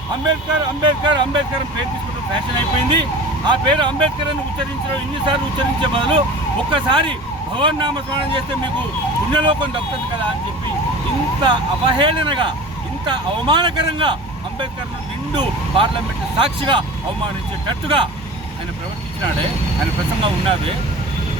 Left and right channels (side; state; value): both; normal; correlation 0.38